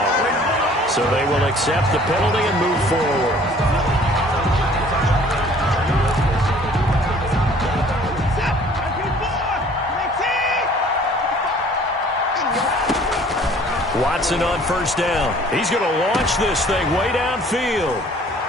So they will accept the penalty and move forward. Watson on first down. He's going to launch this thing way downfield.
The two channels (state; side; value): normal; both; correlation 0.54